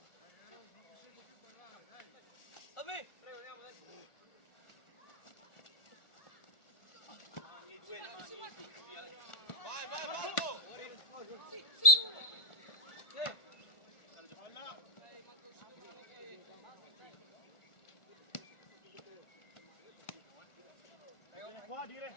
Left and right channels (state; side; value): late; right; 1.4 ms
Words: Dammi! Vai, Balbo! Vieni qua, dire.